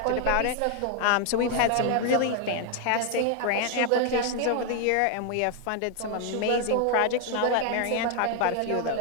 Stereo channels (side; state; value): both; different; correlation 0.00